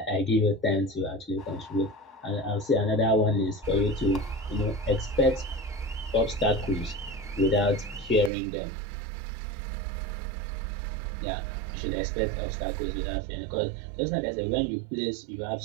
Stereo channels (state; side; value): drops out; left; at 8.3 s